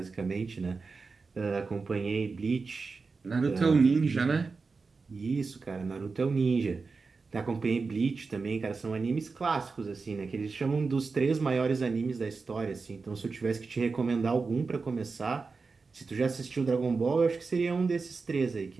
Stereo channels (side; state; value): left; quieter; 4.4 dB